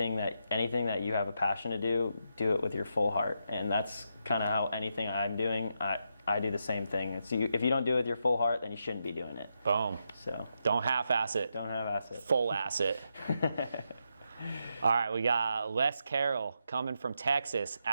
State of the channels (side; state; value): both; inverted; correlation -0.83